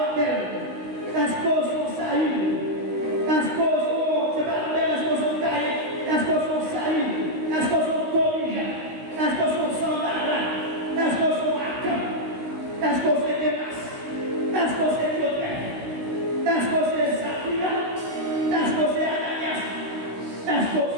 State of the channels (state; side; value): late; left; 16 ms